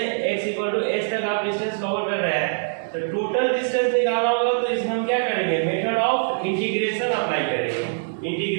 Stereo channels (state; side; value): silent; left; digital silence